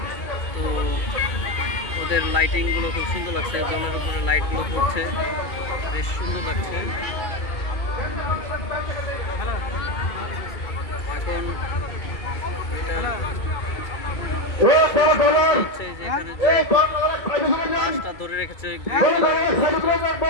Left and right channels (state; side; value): late; right; 2.3 ms